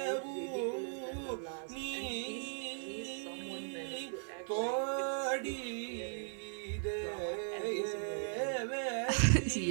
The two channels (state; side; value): silent; left; 53 dB below the other